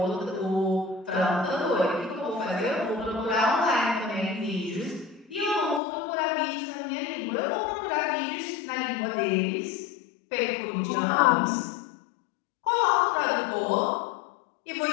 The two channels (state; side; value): drops out; right; at 5.8 s